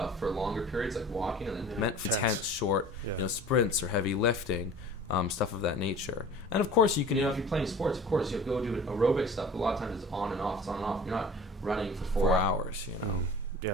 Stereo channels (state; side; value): normal; both; correlation 0.42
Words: for longer periods, like walking, and then meant for intense, short, sprints or heavy lifting. Stuff of that nature. And of course you can, if you're playing sports, of course you go do aerobic stuff, but a lot of times it's on and off. You're not running for 4 hours,